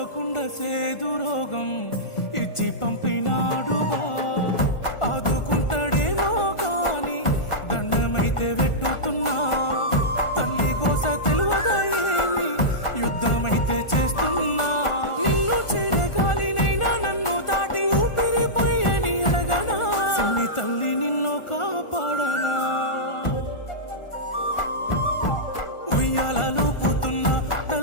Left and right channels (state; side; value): late; right; 1.4 ms